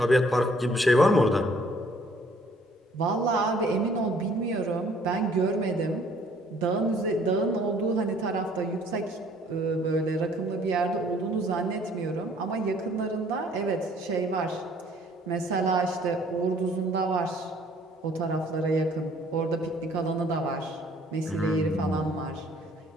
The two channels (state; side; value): normal; both; correlation 0.59